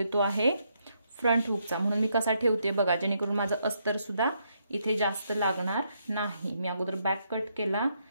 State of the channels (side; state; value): both; inverted; correlation -0.77